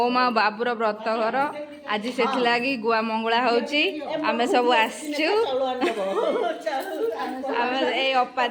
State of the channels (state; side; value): identical; both; correlation 1.00